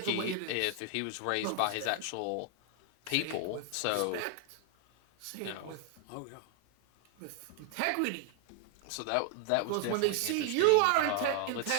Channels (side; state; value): both; different; correlation 0.00